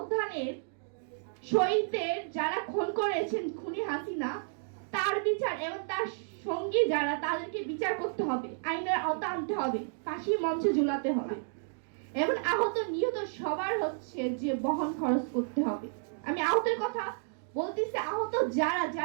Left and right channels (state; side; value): silent; left; digital silence